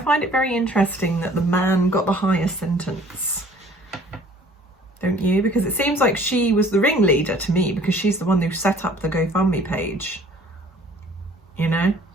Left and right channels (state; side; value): normal; both; correlation 0.53